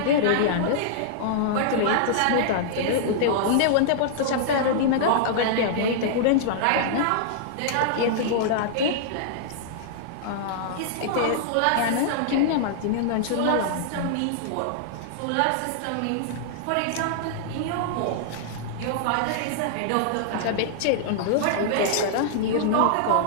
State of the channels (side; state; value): both; different; correlation -0.01